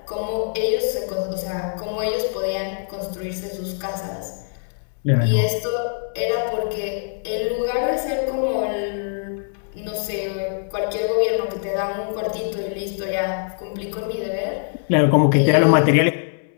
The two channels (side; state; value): right; silent; 63 dB below the other